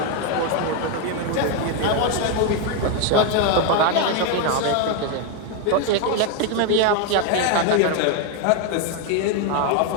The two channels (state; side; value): different; both; correlation 0.01